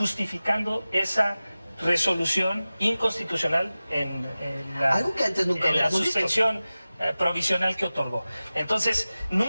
esa resolución inconstitucional en la, Algo que antes nunca en la habíamos visto. suspensión provisional que otorgó. Entonces,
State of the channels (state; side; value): inverted; both; correlation -0.96